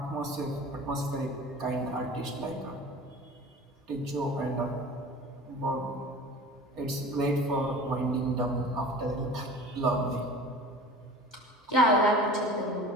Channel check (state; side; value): normal; both; correlation 0.40